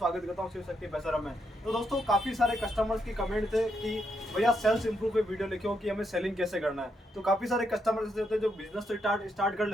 करता हूं शिव शक्ति पैसरम में। तो दोस्तों, काफी सारे कस्टमर्स की कमेंट थे कि भैया सेल्स इंप्रूव पे वीडियो लिखे हो कि हमें सेलिंग कैसे करना है। तो काफी सारे कस्टमर्स होते हैं जो बिजनेस स्टार्ट कर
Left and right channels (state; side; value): normal; both; correlation 0.79